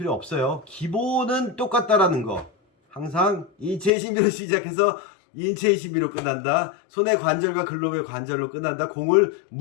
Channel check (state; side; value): drops out; right; at 3.9 s